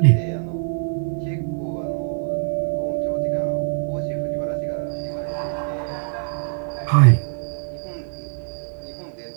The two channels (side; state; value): left; silent; 63 dB below the other